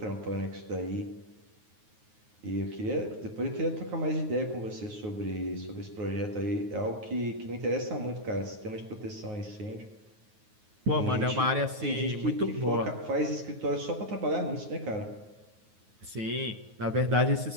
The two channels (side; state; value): left; late; 9.4 ms